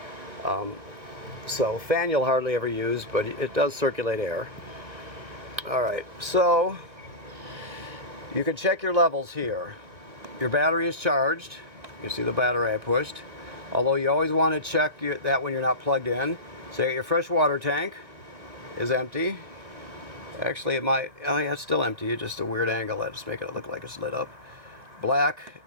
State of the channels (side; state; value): left; late; 1.5 ms